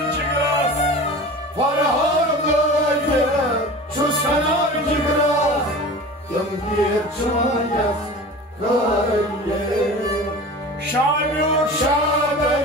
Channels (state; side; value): normal; both; correlation 0.36